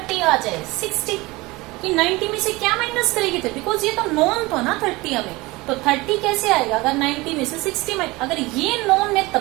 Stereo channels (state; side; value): quieter; left; 22.1 dB